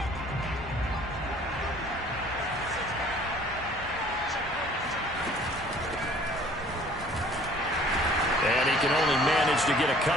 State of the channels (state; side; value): normal; both; correlation 0.53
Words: Can only manage to get a